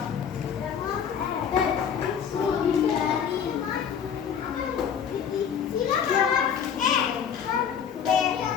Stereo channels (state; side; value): quieter; right; 7.7 dB